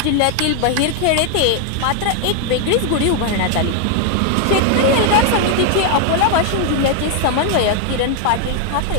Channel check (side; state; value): both; different; correlation 0.00